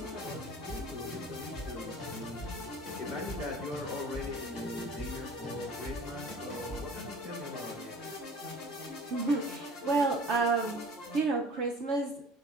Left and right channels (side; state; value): both; normal; correlation 0.44